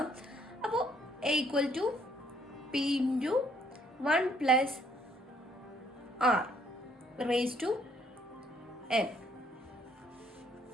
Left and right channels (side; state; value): both; normal; correlation 0.66